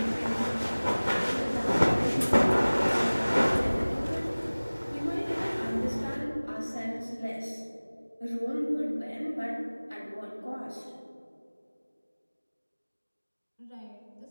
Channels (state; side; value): inverted; both; correlation -1.00